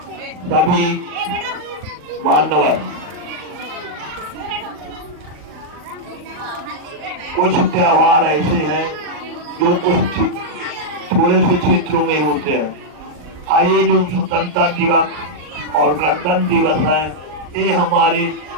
सभी मान्यवर, कुछ त्योहार ऐसे हैं जो कुछ थोड़े से क्षेत्रों में होते हैं। आइए, जो स्वतंत्रता दिवस और गणतंत्र दिवस है, ये हमारे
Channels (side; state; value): left; late; 39 ms